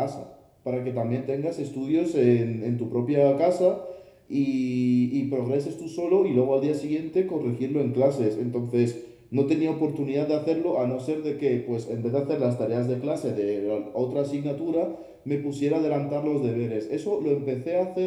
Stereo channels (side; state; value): both; identical; correlation 1.00